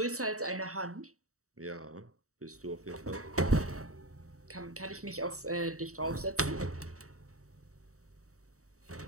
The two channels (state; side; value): late; left; 0.65 ms